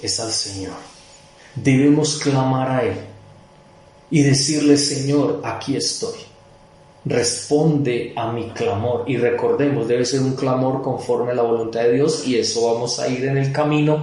es al Señor. Debemos clamar a Él y decirle: Señor, aquí estoy, responde a mi clamor. Y recordemos, debe ser un clamor conforme a la voluntad de Dios, y eso vamos a ir en el camino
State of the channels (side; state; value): both; identical; correlation 1.00